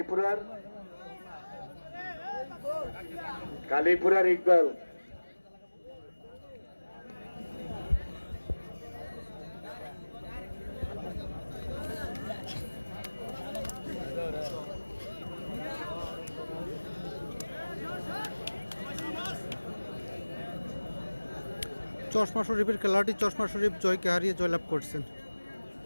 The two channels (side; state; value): both; inverted; correlation -1.00